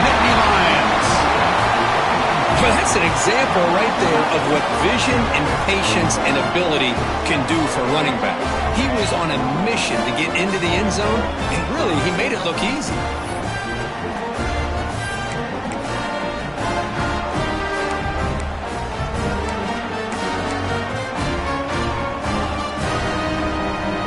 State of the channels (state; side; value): identical; both; correlation 1.00